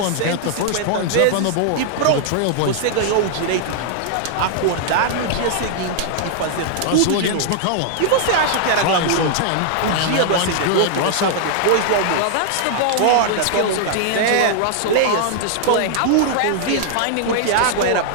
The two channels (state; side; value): different; both; correlation -0.01